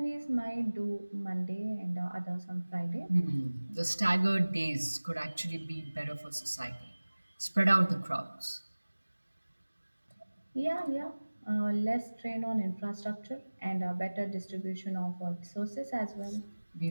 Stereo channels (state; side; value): inverted; both; correlation -1.00